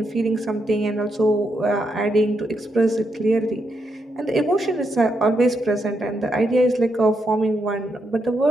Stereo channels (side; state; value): both; normal; correlation 0.81